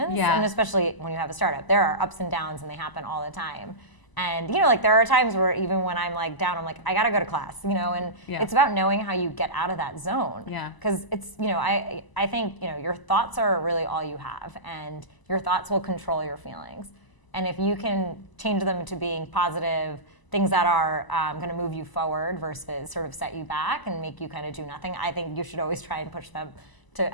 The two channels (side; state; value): right; late; 1.0 ms